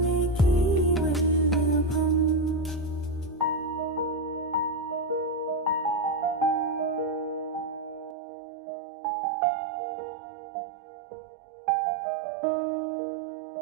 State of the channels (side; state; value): left; drops out; at 8.2 s